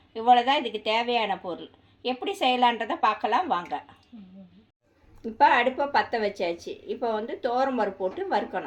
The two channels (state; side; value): identical; both; correlation 1.00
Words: இவ்வளோ தான் இதுக்கு தேவையான பொருள். எப்படி செய்யலான்றதை பார்க்கலாம் வாங்க. இப்போ அடுப்பை பற்ற வச்சாச்சு. இப்போ துவரம்பருப்பு போட்டு